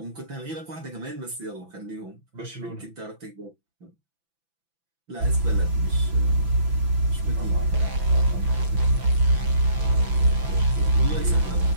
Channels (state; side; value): late; left; 6.0 ms